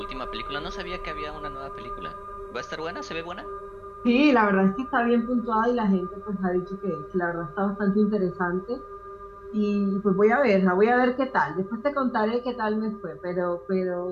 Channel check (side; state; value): both; identical; correlation 1.00